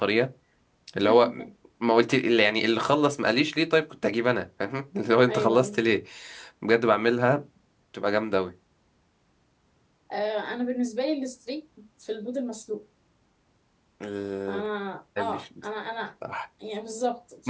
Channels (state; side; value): identical; both; correlation 1.00